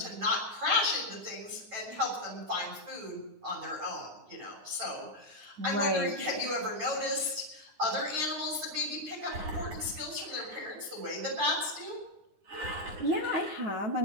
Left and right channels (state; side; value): late; left; 9.7 ms